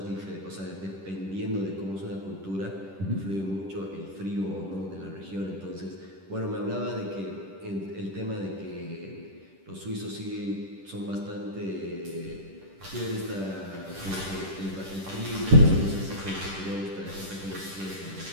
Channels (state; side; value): late; left; 10 ms